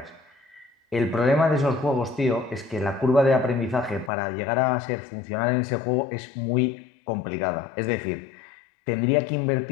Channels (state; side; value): drops out; right; at 4.1 s